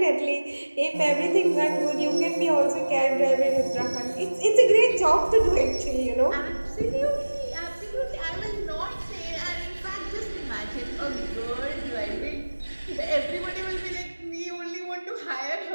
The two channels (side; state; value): both; inverted; correlation -1.00